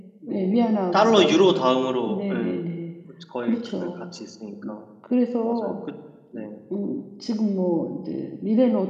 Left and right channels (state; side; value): identical; both; correlation 1.00